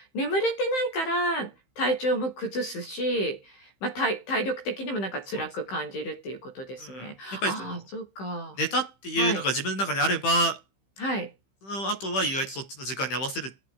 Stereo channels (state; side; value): late; right; 15 ms